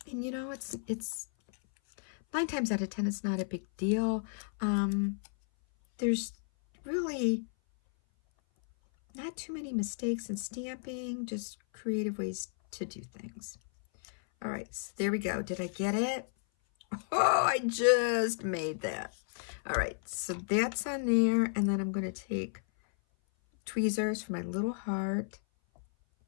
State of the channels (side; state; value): right; silent; 56 dB below the other